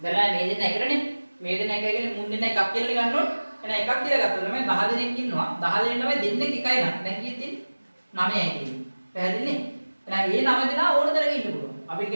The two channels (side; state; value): both; inverted; correlation -1.00